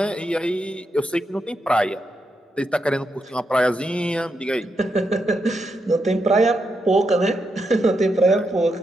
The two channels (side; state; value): both; normal; correlation 0.83